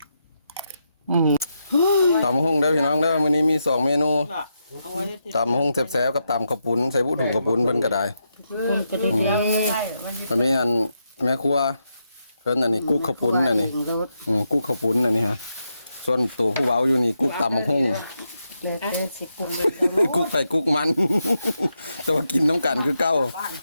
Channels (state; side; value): inverted; both; correlation -0.84